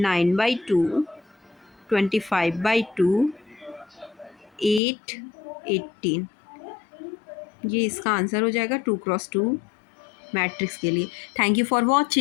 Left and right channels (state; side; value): drops out; right; at 4.8 s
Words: 25/2, 8, 18। ये इसका आंसर हो जाएगा 2 × 2 मैट्रिक्स के लिए। Thank you for